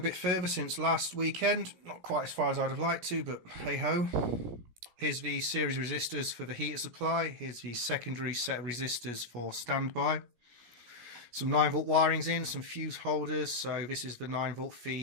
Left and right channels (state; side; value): late; left; 17 ms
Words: bit further since last weekend. Not quite as far as I'd have liked to, but hey ho. Here's the series resistors for the heater supply. Here's the secondary set of resistors for standby. Some 9-volt wirings in, some fuse holders. So this is the 9-volt